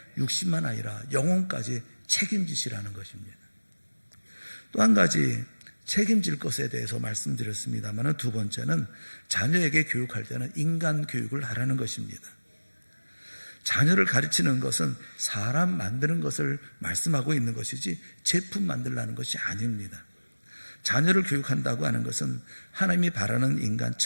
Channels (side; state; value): both; inverted; correlation -1.00